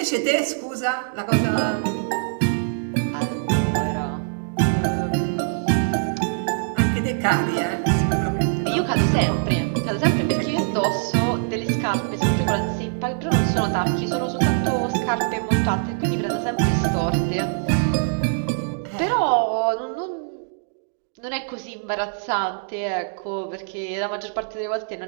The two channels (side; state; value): left; silent; digital silence